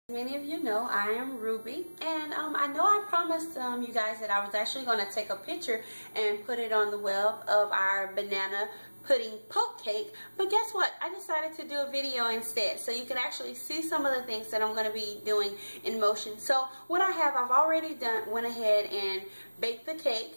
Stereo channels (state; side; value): inverted; both; correlation -1.00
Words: Many of you know I am Ruby, and I know I promised you guys that I was actually going to take a picture and put it on the web of our banana pudding poke cake, but guess what? I decided to do a video instead so you can actually see some of the things that I'm going to be doing in motion. So what I've already went ahead and baked the cake.